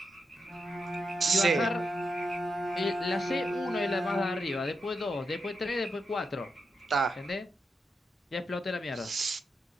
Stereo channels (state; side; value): normal; both; correlation 0.85